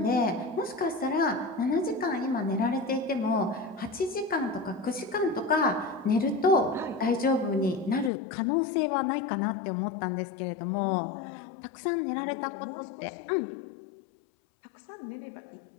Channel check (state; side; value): drops out; right; at 8.1 s